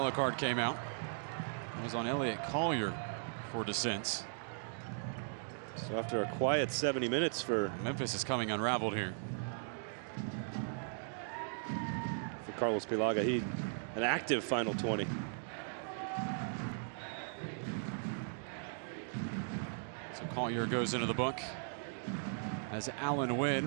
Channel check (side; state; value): left; silent; digital silence